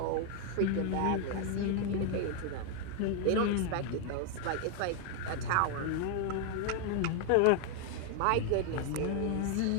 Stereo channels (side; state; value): both; different; correlation 0.00